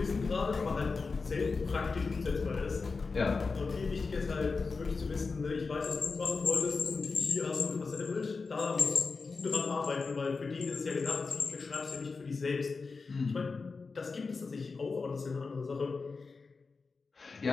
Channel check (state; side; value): quieter; right; 4.4 dB